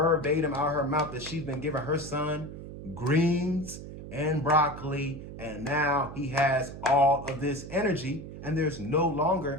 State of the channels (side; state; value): right; noise; hum, 11 dB below the sound